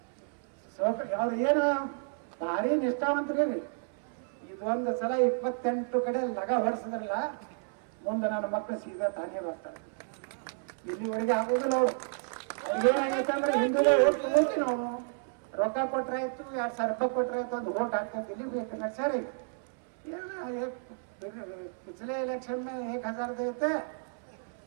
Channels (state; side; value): silent; left; 57 dB below the other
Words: ಅವ್ರು ಏನು ಭಾರಿ ನಿಷ್ಠಾವಂತರಿ. ಇದೊಂದು ಸಲ 28 ಕಡೆ ಲಗ ಹೊಡ್ಸಿದ್ರಲ್ಲ, ಮುಂದೆ ನನ್ನ ಮಕ್ಕಳು ಸೀದಾ ತಾನೇ ಬರ್ತಾರೆ. ಇಲ್ಲಿವರೆಗೆ ಆಗೋದಿಲ್ಲ. ಅವ್ರಿಗೇನಾಗೈತೆ ಅಂದ್ರೆ ಹಿಂದೂಗಳೇ ಓಟ್ ಹೋಗಿ ನಾವು ರೊಕ್ಕ ಕೊಟ್ರಾಯ್ತು, 2000 ರೂಪಾಯಿ ಕೊಟ್ರಾಯ್ತು, ಒಂದು ಓಟ್ ಹಾಕ್ತಂತ ಇಲ್ಲಿ ಬೇಕು ನಡ್ಸಾರಿ. पिछले इलेक्शन में 1000 देते,